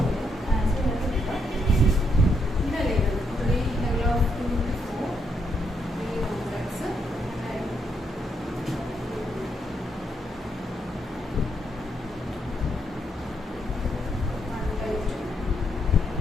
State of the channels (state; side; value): normal; both; correlation 0.77